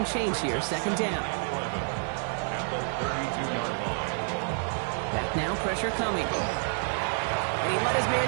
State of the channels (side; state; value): left; silent; 59 dB below the other